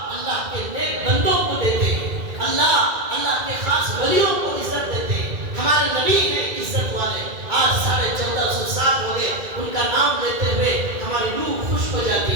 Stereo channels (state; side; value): late; left; 2.2 ms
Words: کے نیک بندوں کو دیتے ہیں, اللہ کے خاص ولیوں کو عزت دیتے ہیں. ہمارے نبی ہیں عزت والے. آج 1450 سال ہو گئے ان کا نام لیتے ہوئے ہماری روح خوش ہو جاتی